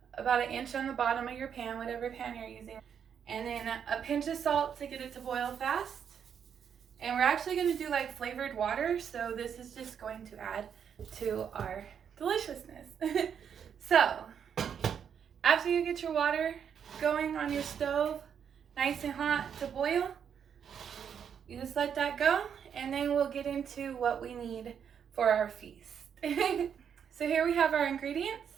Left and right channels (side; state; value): left; quieter; 7.9 dB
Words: about 1 inch on the bottom of your pan, whatever pan you're using. And then a pinch of salt to get it to boil fast. And we're actually gonna do like flavored water, so this is just going to add to our deliciousness. So, after you get your water going on your stove, nice and hot to boil, you just let that go, and then we'll get into what we need for our feast. So here we have our